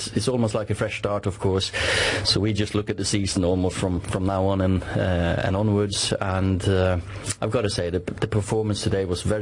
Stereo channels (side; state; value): both; identical; correlation 1.00